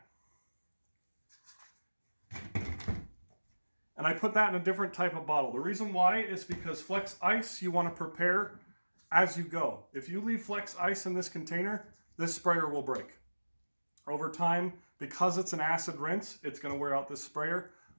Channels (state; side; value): inverted; both; correlation -1.00